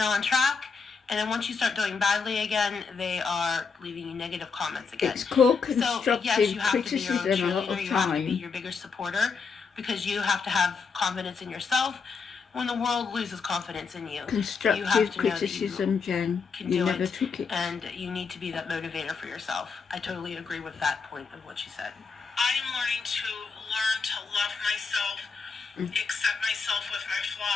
on track. And then once you start doing badly again, they are leaving you negative comments again. It's called So constructive yes, you have to be your own criticism a lot cheerleader. of You have to be time. your biggest supporter because you have to have confidence in yourself. When the world loses confidence in you, you have Constructive to know that criticism, Jen. can You do never it, took it. and you need to be that motivator for yourself. I totally agree with that point of what she said. I am learning to love myself, accept myself with my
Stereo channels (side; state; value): right; quieter; 5.2 dB